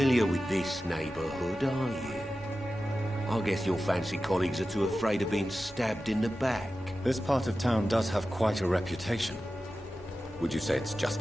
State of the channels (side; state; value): both; normal; correlation 0.93